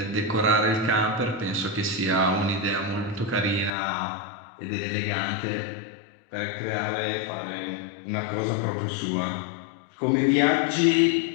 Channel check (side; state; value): right; drops out; at 3.7 s